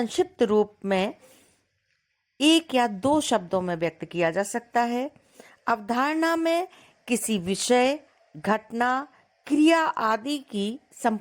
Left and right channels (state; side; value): identical; both; correlation 1.00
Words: रूप में एक या दो शब्दों में व्यक्त किया जा सकता है। अवधारणा में किसी विषय, घटना क्रिया आदि की